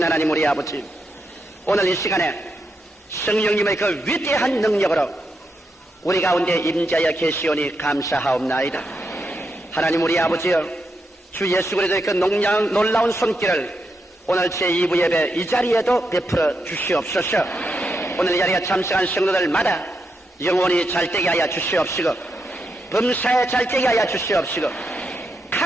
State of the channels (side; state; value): both; normal; correlation 0.83